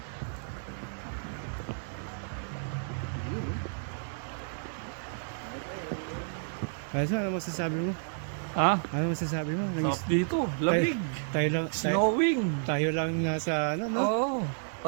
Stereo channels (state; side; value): silent; left; digital silence